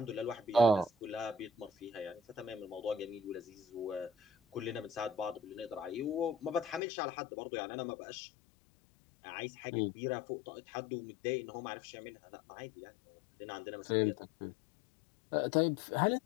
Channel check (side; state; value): right; drops out; at 6.8 s